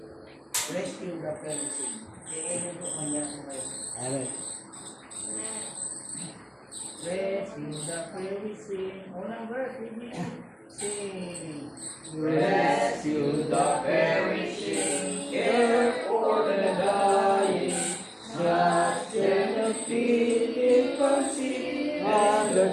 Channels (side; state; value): both; identical; correlation 1.00